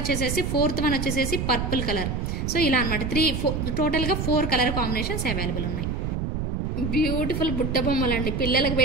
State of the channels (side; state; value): right; noise; rumble, 2 dB below the sound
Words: 4th వన్ వచ్చేసేసి పర్పుల్ కలర్. సో ఇలా అనమాట టోటల్గా 4 కలర్ కాంబినేషన్స్ అవైలబుల్ ఉన్నాయి. బ్యూటిఫుల్ బుట్ట బొమ్మలు అండి, పిల్లలకు